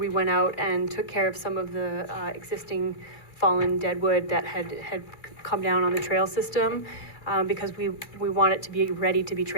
went out and took care of some of the existing fallen deadwood that had come down on the trail system because we want it to be ready to be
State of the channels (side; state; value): right; late; 2.3 ms